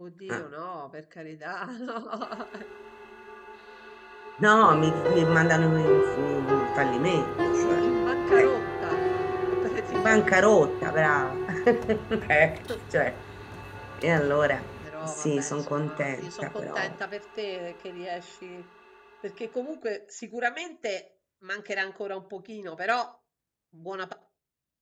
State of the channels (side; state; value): both; identical; correlation 1.00